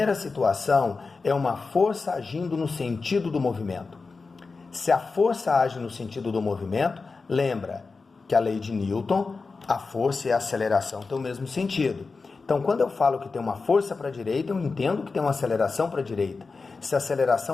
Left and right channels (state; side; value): quieter; right; 4.3 dB